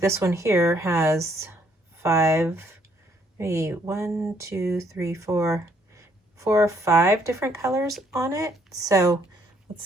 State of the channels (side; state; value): both; normal; correlation 0.68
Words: one here has 4 or 5 different colors on it. So let's